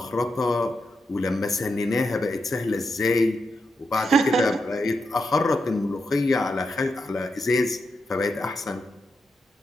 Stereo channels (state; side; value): normal; both; correlation 0.85